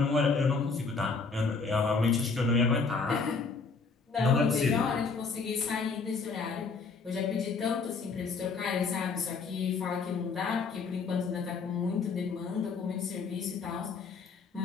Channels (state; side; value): quieter; right; 4.6 dB